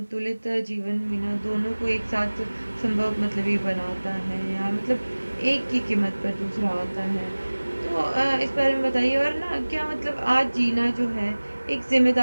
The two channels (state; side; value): inverted; both; correlation -1.00